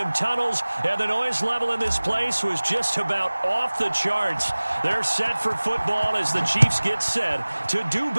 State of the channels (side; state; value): both; inverted; correlation -1.00